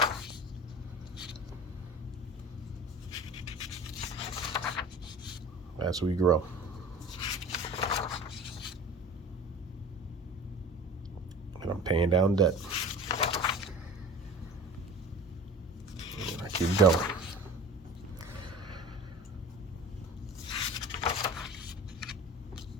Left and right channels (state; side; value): normal; both; correlation 0.39